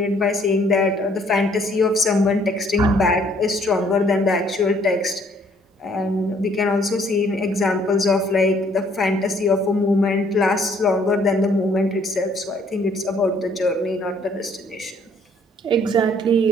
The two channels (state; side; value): normal; both; correlation 0.63